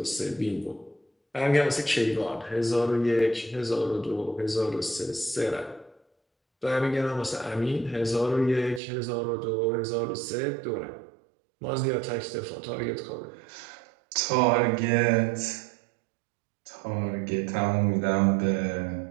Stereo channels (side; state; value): left; drops out; at 8.8 s